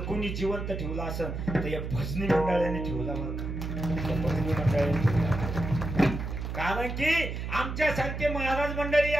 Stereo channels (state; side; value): noise; right; hum, 5 dB below the sound